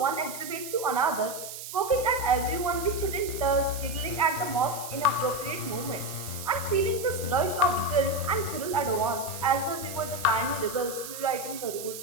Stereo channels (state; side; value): noise; right; hiss, 10 dB below the sound